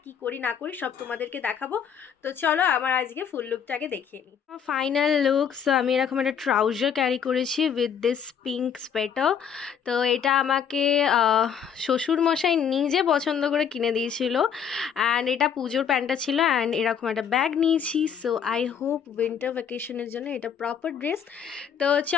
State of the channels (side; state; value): right; quieter; 7.8 dB